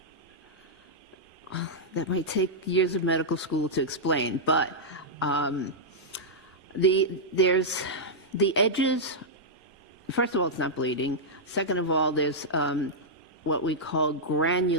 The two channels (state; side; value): normal; both; correlation -0.08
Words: healing? That might take years of medical school to explain, but there's the edges. First of all, it's not bleeding. Second of all, there's what we call